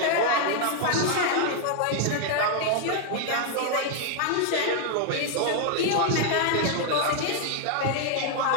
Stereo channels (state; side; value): different; both; correlation 0.00